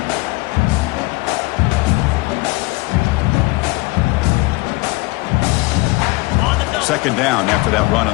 Second down after that run on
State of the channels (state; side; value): quieter; right; 22.9 dB